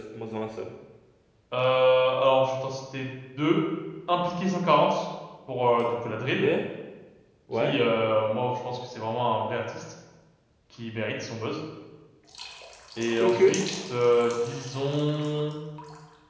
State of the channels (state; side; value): identical; both; correlation 1.00